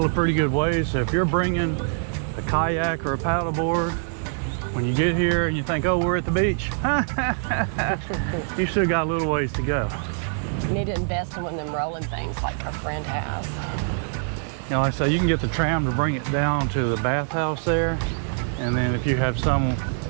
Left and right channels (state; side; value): silent; left; 62 dB below the other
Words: a pretty good way. So if you're bringing a kayak or a paddleboard, when you get here and you think, oh, we're at the beach, you still got a little ways to go. We need to invest in one of them rolling things like our friend has. You know, like I say, you can get the tram to bring it down to the bathhouse there. And then if you have some